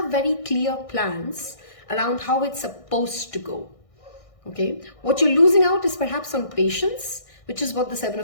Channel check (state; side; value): late; right; 1.6 ms